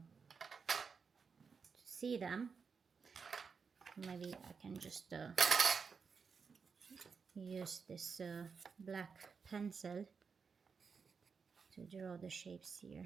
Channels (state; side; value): quieter; left; 5.6 dB